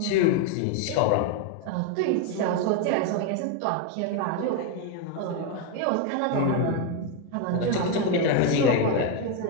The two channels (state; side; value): different; both; correlation 0.02